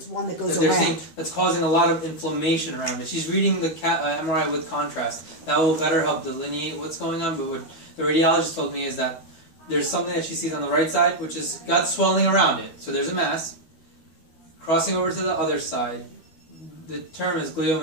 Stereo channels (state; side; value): late; right; 12 ms